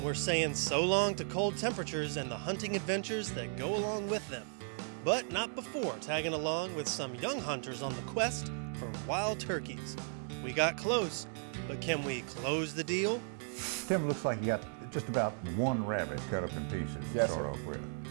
we're saying so long to cold temperatures and the hunting adventures that go along with them. But not before tagging along with some young hunters on the quest for wild turkeys. We got close, but can we close the deal? Tim, looks like you got just about one rabbit cut up in pieces to start off with.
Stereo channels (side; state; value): left; silent; 54 dB below the other